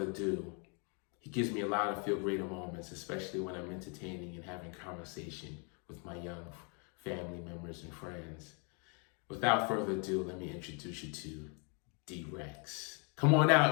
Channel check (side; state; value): right; quieter; 36.7 dB